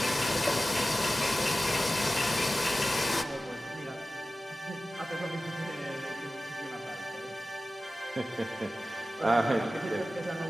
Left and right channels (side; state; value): both; normal; correlation 0.95